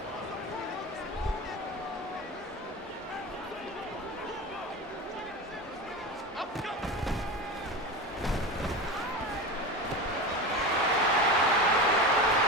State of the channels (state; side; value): normal; both; correlation 0.25